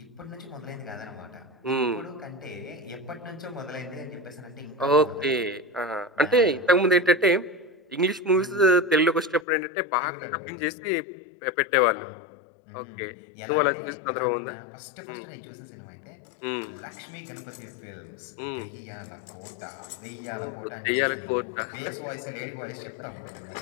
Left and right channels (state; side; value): drops out; right; at 9.5 s